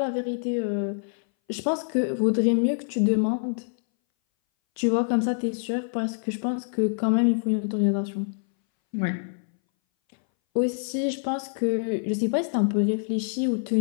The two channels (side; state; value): right; silent; 60 dB below the other